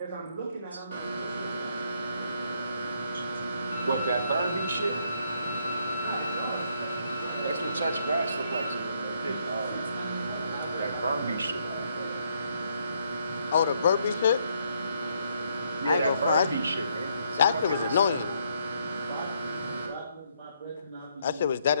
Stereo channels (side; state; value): both; inverted; correlation -0.72